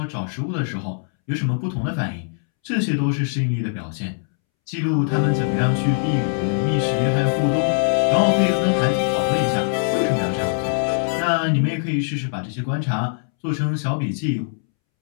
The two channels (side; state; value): right; silent; 64 dB below the other